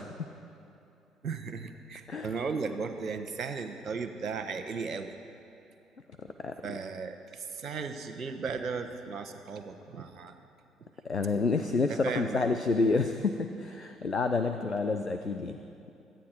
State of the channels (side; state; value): both; normal; correlation 0.65